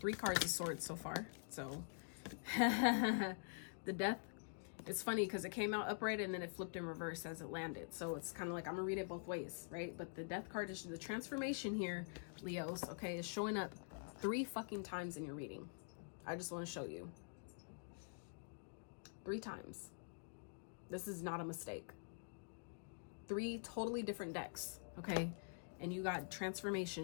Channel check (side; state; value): right; silent; digital silence